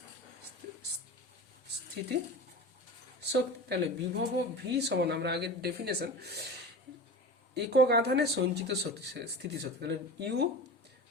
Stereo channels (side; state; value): both; normal; correlation 0.30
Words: স্থিতি শক্তি। তাহলে বিভব ভি সমান আমরা আগের ডেফিনেশন, একক আধানে সঞ্চিত স্থিতিশক্তি। তাহলে ইউ